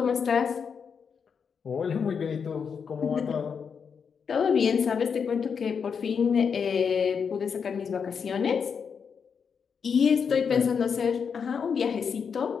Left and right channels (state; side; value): quieter; right; 6.4 dB